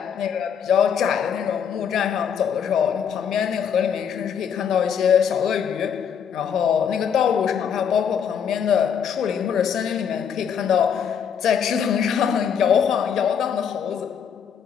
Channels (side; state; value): right; quieter; 7.7 dB